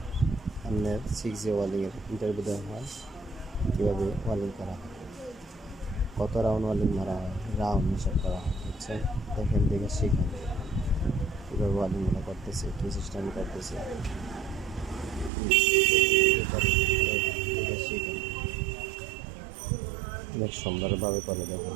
আমাদের 6G ওয়ালিংয়ের ইন্টারভিউ দেওয়া হয়, কীভাবে ওয়ালিং করা হয়, কত রাউন্ড ওয়ালিং মারা হয়, রাউন্ড হিসাব করা হয়, বুঝছেন? দেখেন দেখে শিখেন কীভাবে ওয়ালিংগুলো করতেছে, কী সিস্টেম করতেছে, দেখে শিখেন। অনেক সুন্দরভাবে করে দেখেন,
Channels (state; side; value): drops out; left; at 15.3 s